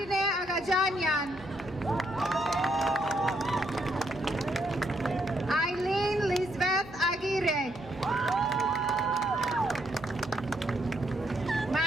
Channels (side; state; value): both; normal; correlation 0.74